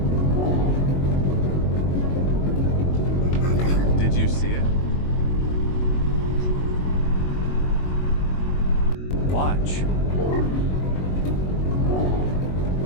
Did you see it? Watch.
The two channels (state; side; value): late; right; 22 ms